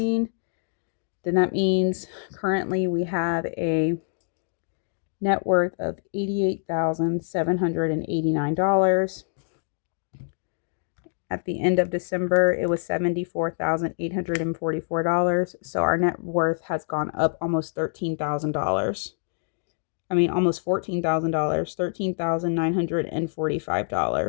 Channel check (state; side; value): silent; right; digital silence